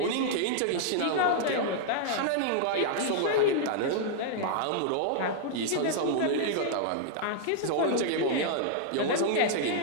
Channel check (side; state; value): both; different; correlation -0.01